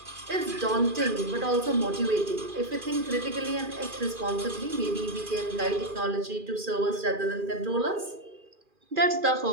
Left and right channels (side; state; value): left; late; 2.4 ms